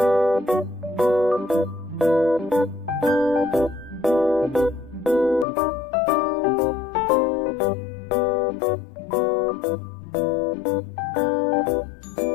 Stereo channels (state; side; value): drops out; right; at 5.5 s